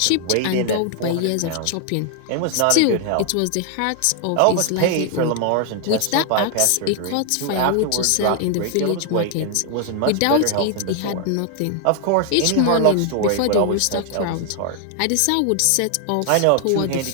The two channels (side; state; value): both; different; correlation 0.00